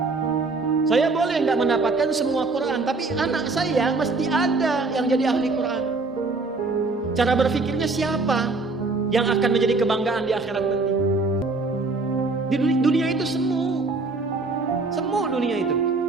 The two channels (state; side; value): quieter; left; 3.6 dB